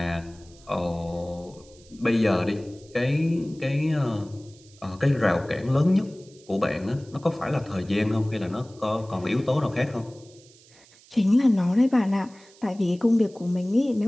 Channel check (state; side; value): noise; right; hiss, 26 dB below the sound